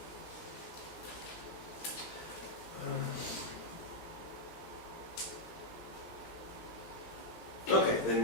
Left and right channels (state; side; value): late; right; 17 ms